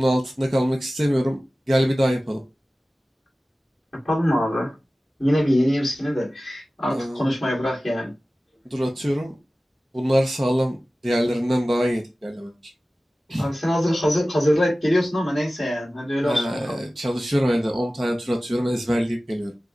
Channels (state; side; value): normal; both; correlation 0.97